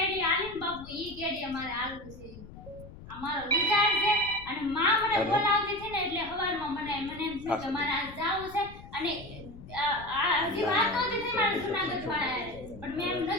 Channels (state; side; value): noise; left; rumble, 16 dB below the sound